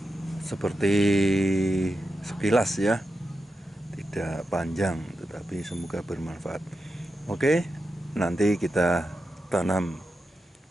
seperti sekilas ya, tidak panjang, tapi semoga bermanfaat. Oke, nanti kita tanam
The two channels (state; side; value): normal; both; correlation 0.89